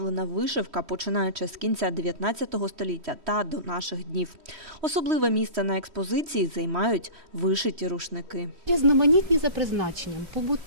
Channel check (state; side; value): late; left; 3.1 ms